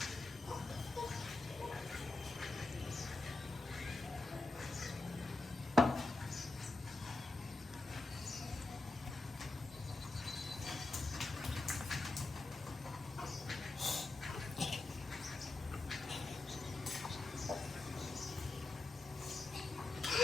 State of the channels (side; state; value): right; quieter; 3.2 dB